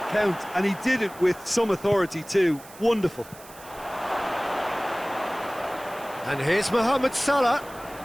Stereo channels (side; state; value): right; noise; hiss, 20 dB below the sound